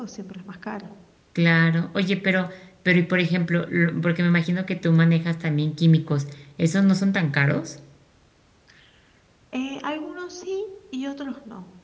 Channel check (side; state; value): both; identical; correlation 1.00